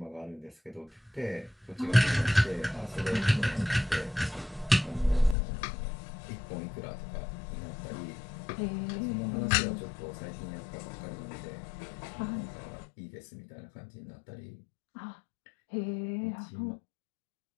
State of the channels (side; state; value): right; drops out; at 5.4 s